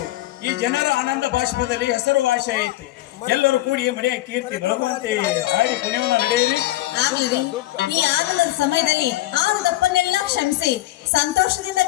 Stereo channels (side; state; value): right; quieter; 16.2 dB